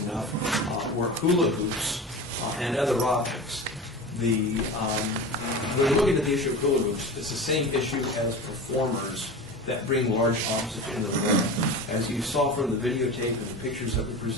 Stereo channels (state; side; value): normal; both; correlation 0.31